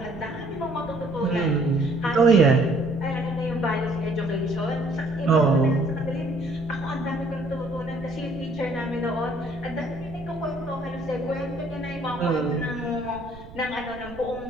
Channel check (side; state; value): right; noise; rumble, 16 dB below the sound